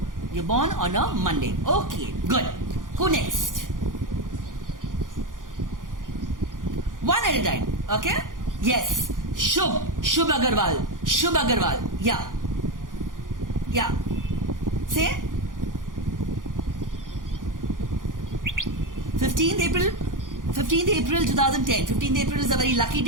You're born on a Monday. Okay, good. Who next? One at a time. Okay? Yes. Shubh Agarwal. Yeah. Say. 15th April 2010. 15th April is a very lucky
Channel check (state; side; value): late; left; 0.89 ms